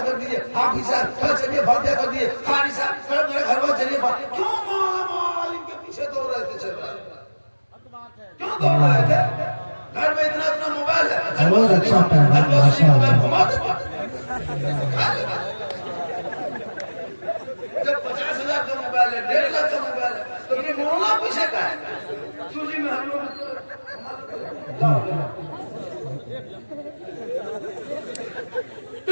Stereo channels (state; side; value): inverted; both; correlation -1.00